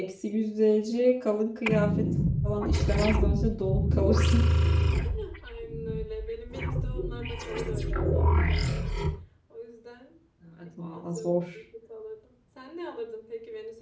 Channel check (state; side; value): identical; both; correlation 1.00